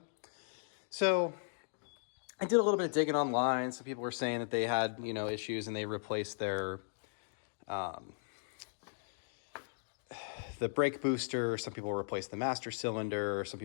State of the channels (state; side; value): silent; right; digital silence